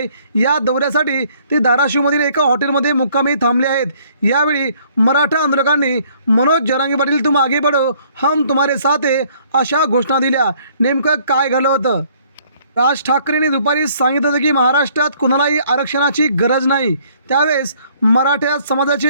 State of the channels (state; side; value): inverted; both; correlation -0.61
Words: या दौऱ्यासाठी ते धाराशिवमधील एका हॉटेलमध्ये मुक्कामी थांबले आहेत। यावेळी मराठा आंदोलकांनी मनोज जरांगे पाटील तुम आगे बढ़ो, हम तुम्हारे साथ है अशा घोषणा दिल्या। नेमकं काय घडलं होतं? राज ठाकरेंनी दुपारी सांगितलं होतं की महाराष्ट्रात कुणालाही आरक्षणाची गरज नाही। त्यावेळेस मराठा